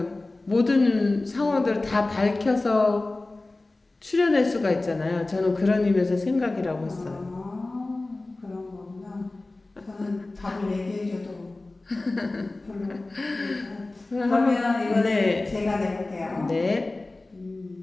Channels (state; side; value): quieter; right; 3.0 dB